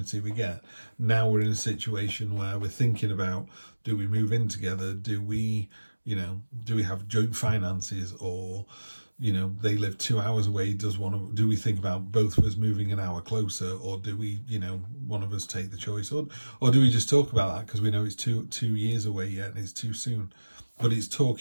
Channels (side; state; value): both; inverted; correlation -1.00